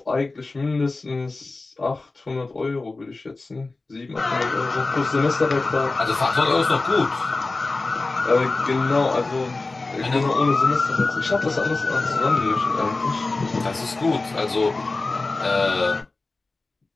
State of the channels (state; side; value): quieter; right; 3.4 dB